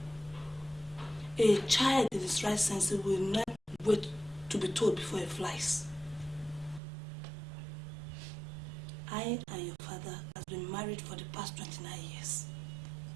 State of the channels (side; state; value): left; drops out; at 6.8 s